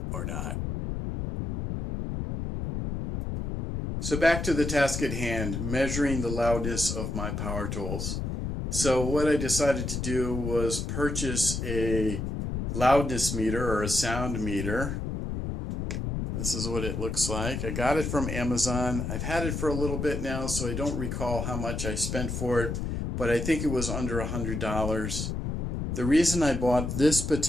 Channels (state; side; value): noise; left; rumble, 3 dB below the sound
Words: or not. So back to the task at hand, measuring the loudness of my power tools. So what I decided to do was purchase a loudness meter or a sound meter. This is what it looks like. I got it from Amazon. I've had it for a little bit now, so I don't recall how much I spent for it, but I think it was under $100. The reason I bought this